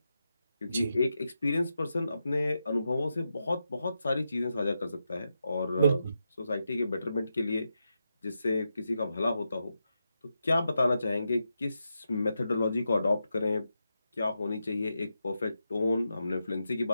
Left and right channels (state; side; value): inverted; both; correlation -0.87